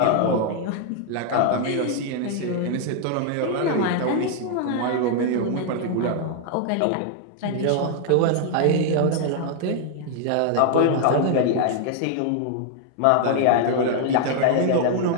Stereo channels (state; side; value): different; both; correlation 0.00